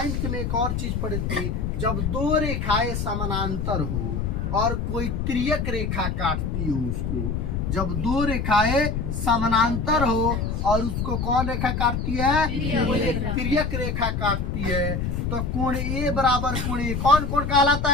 में एक और चीज पढ़ी थी, जब दो रेखाएं समानांतर हो और कोई तिर्यक रेखा काटती हो उसको, जब दो रेखाएं समानांतर हो और उसको कौन रेखा काटती है, कोई एक तिर्यक रेखा काटती है, तो कोण ए बराबर कोण ए कौन कोण कहलाता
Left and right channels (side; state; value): left; noise; rumble, 1 dB below the sound